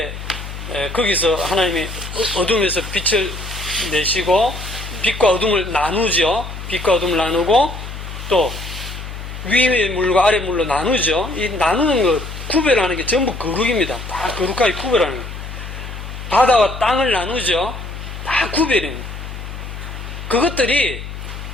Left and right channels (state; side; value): noise; left; hum, 9 dB below the sound